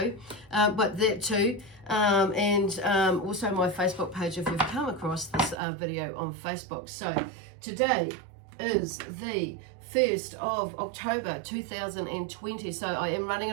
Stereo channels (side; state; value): left; drops out; at 5.6 s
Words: but that too. And also my Facebook page if you've come across this video on Facebook. So today is the 1st of October 2020. So I am running